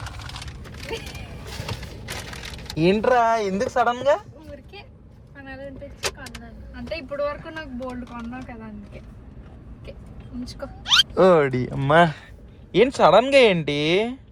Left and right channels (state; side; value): identical; both; correlation 1.00